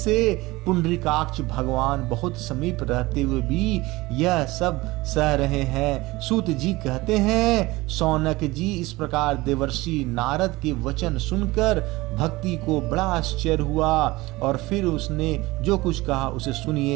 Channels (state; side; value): quieter; left; 20.6 dB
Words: पुंडरीकाक्ष भगवान बहुत समीप रहते हुए भी यह सब सह रहे हैं। सूत जी कहते हैं, शौनक जी, इस प्रकार देवर्षि नारद के वचन सुनकर भक्ति को बड़ा आश्चर्य हुआ और फिर उसने जो कुछ कहा उसे